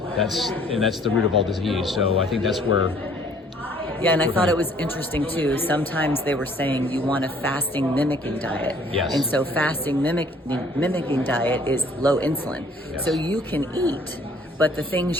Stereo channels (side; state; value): both; normal; correlation 0.58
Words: That's the root of all disease. So I think that's where. Yeah, and I thought it was interesting too. Sometimes they were saying you want a fasting mimicking diet. Yes. And so fasting mimicking diet is low insulin. Yes. So you can eat, but the things